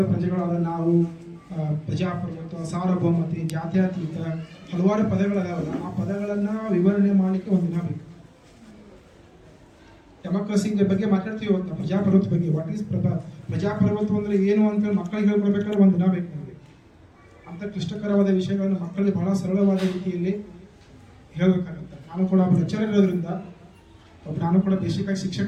ಪ್ರಜೆಗಳಾದ ನಾವು, ಪ್ರಜಾಪ್ರಭುತ್ವ, ಸಾರ್ವಭೌಮತೆ, ಜಾತ್ಯತೀತ, ಹಲವಾರು ಪದಗಳದಾವಲ್ಲ, ಆ ಪದಗಳನ್ನು ವಿವರಣೆ ಮಾಡಲಿಕ್ಕೆ ಒಂದು ದಿನ ಬೇಕು. ಡೆಮೋಕ್ರಸಿ ಬಗ್ಗೆ ಮಾತಾಡ್ತೀವಿ ಇವತ್ತು, ಪ್ರಜಾಪ್ರಭುತ್ವ ಬಗ್ಗೆ. ವಾಟ್ ಈಸ್ ಪ್ರಜಾಪ್ರಭುತ್ವ ಅಂದರೆ ಏನು ಅಂತ ಮಕ್ಕಳಿಗೆ ಹೇಳ್ಕೊಡ್ಬೇಕಾದ್ರೆ ಒಂದು ದಿನ ಬೇಕು ನಮಗೆ. ಅಂಥ ಕ್ಲಿಷ್ಟಕರವಾದ ವಿಷಯಗಳನ್ನು ಮಕ್ಕಳಿಗೆ ಬಹಳ ಸರಳವಾದ ರೀತಿಯಲ್ಲಿ ಹೇಳಬೇಕಾಗುತ್ತೆ. ನಾನು ಕೂಡ ಒಬ್ಬ ಲೆಕ್ಚರರ್ ಇರೋದ್ರಿಂದ, ನಾನು ಕೂಡ ಬೇಸಿಕ್ ಆಗಿ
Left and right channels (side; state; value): both; identical; correlation 1.00